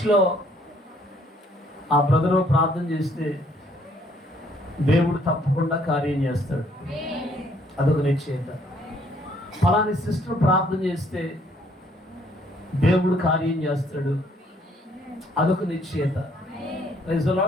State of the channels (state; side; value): normal; both; correlation 0.65